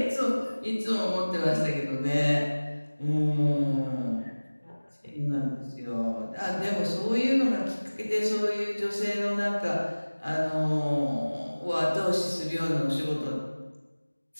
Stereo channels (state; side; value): inverted; both; correlation -1.00